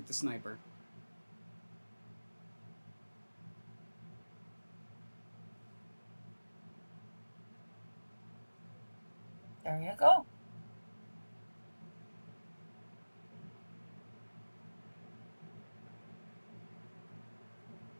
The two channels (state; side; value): inverted; both; correlation -1.00